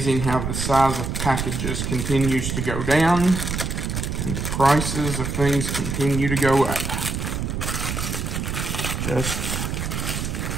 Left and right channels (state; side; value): noise; right; rumble, 3 dB below the sound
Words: how the size of packages continues to go down and the prices of things continue to go up.